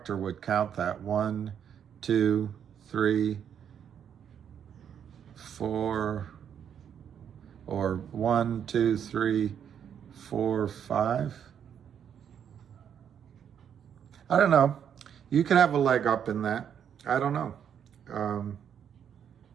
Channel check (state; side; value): quieter; left; 8.5 dB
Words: would count that. 1, 2, 3, 4, or 1, 2, 3, 4, 5. I don't know. You could have a leg up in that. I don't know.